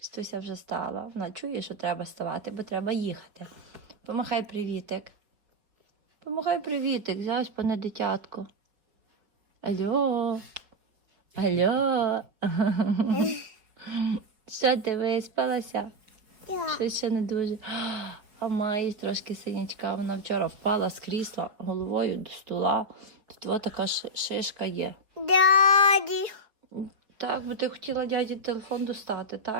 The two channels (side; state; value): left; late; 4.8 ms